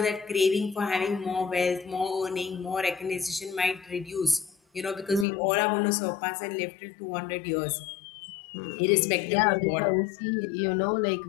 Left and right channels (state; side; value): drops out; right; at 5.2 s